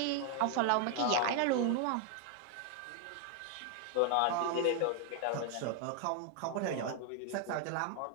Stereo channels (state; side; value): different; both; correlation 0.00